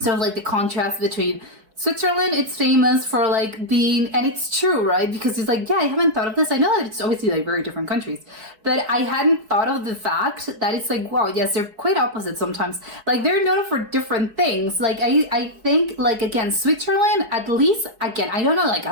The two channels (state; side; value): late; left; 4.6 ms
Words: of like the contrast between Switzerland. It's famous for like being, and it's true, right? Because it's like, yeah, I haven't thought of this. I know that it's obviously like very different countries, but I hadn't thought of the fact that it's like, wow, yes, they're quite opposite sometimes. Like, they're known for different things. Like, I think like, again, Switzerland, at least, again, I don't know like